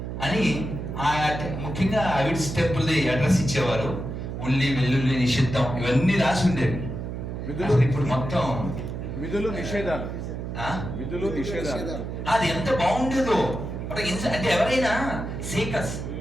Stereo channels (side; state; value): right; noise; hum, 6 dB below the sound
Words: అని ముఖ్యంగా అవిడ్స్ టెంపుల్ది అడ్రస్ ఇచ్చేవారు. ఉల్లి వెల్లుల్లి నిషిద్ధం ఇవన్నీ రాసి ఉండేవి. ఇప్పుడు మొత్తం విధులు నిషేధాలు అది ఎంత బాగుండేదో. అంటే ఎవరైనా సీకర్స్